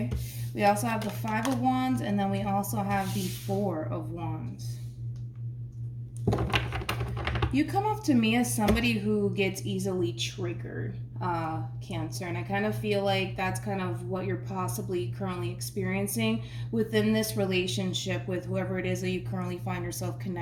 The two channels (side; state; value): both; identical; correlation 1.00